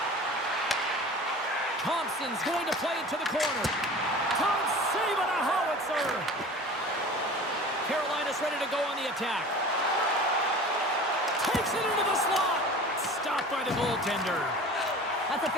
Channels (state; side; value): normal; both; correlation 0.39